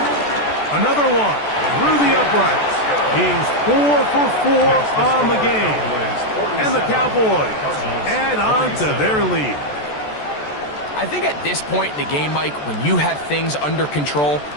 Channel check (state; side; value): late; right; 14 ms